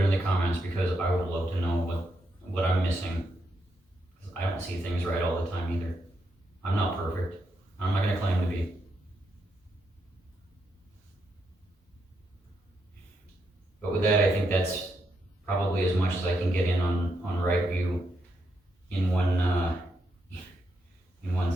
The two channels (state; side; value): normal; both; correlation 0.81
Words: the comments, because I would love to know what I'm missing. I don't see things right all the time either. I'm not perfect. I'm not going to claim to be. But with that, I think that's probably as much as I can get in on right view in one